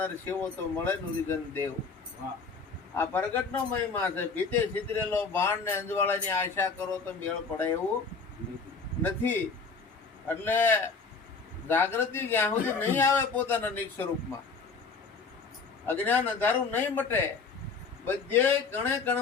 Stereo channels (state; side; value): quieter; right; 4.7 dB